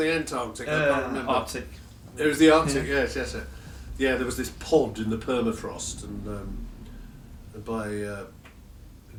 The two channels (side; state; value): both; identical; correlation 1.00